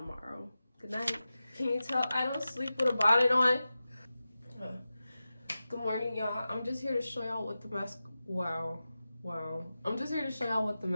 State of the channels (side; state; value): both; inverted; correlation -0.94